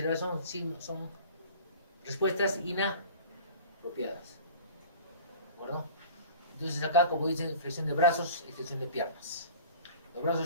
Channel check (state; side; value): inverted; both; correlation -0.42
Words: son respuestas inapropiadas. ¿De acuerdo? Entonces, acá, como dicen, flexión de brazos, extensión de piernas. Los brazos